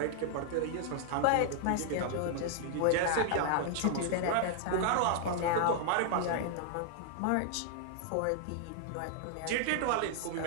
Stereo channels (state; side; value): different; both; correlation -0.01